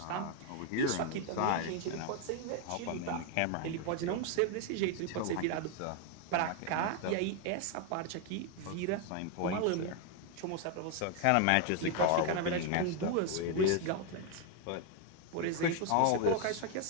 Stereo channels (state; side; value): different; both; correlation 0.01